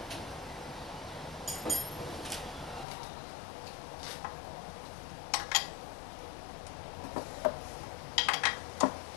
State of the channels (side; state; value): right; drops out; at 2.9 s